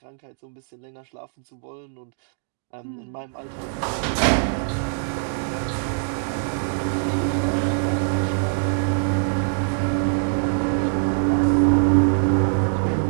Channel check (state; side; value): silent; left; digital silence